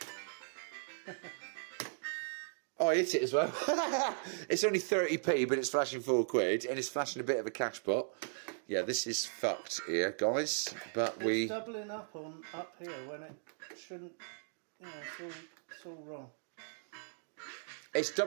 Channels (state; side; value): silent; left; digital silence